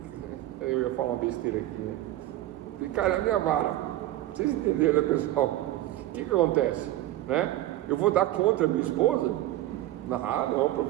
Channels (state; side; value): quieter; left; 14.8 dB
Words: Eu ia falar uma besteira aqui, né? E cai na minha vara. Vocês entenderam, né, pessoal? O que acontece, né? Eu vou dar contra a minha esposa? Não,